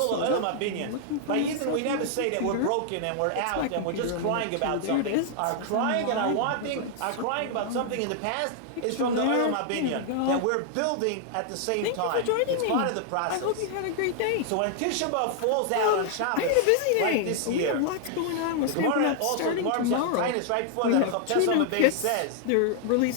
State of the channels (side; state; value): both; different; correlation 0.00